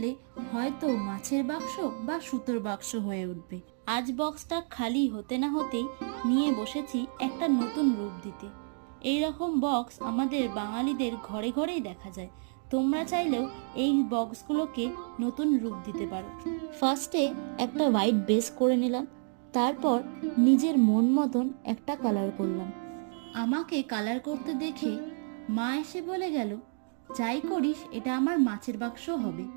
হয়তো মাছের বাক্স বা সুতোর বাক্স হয়ে উঠবে। আজ বক্সটা খালি হতে না হতেই নিয়ে বসেছি একটা নতুন রূপ দিতে। এই রকম বক্স আমাদের বাঙালিদের ঘরে ঘরেই দেখা যায়। তোমরা চাইলেও এই বক্সগুলোকে নতুন রূপ দিতে পারো। ফার্স্টে একটা হোয়াইট বেস করে নিলাম, তারপর নিজের মন মতন একটা কালার করলাম। আমাকে কালার করতে দেখে মা এসে বলে গেল, যাই করিস এটা আমার মাছের বাক্স হবে।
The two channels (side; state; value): left; silent; 58 dB below the other